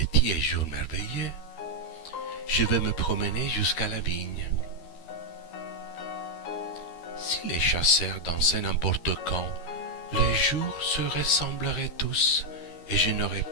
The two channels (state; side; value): late; right; 12 ms